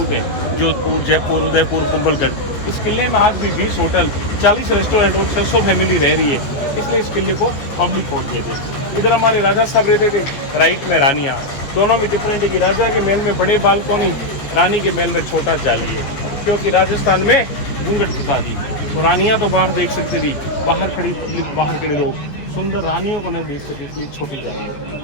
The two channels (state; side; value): late; right; 14 ms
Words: है, जोधपुर, जयपुर, उदयपुर, कुंभलगढ़। इस किले में आज भी 20 होटल, 40 रेस्टोरेंट और 600 फैमिली रह रही है, इसलिए इस किले को पब्लिक फोर्ट कहते हैं। इधर हमारे राजा साहब रहते थे, राइट में रानियाँ। दोनों में डिफरेंट है कि राजा के महल में बड़े बालकोनी, रानी के महल में छोटा जाली है, क्योंकि राजस्थान में घूंघट प्रथा थी। तो रानियाँ तो बाहर देख सकती थी, बाहर खड़ी पब्लिक, बाहर खड़े लोग सुंदर रानियों को न देख सके, इसलिए छोटी जाली होती